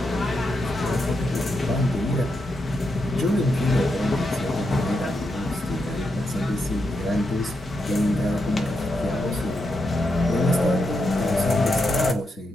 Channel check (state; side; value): normal; both; correlation 0.84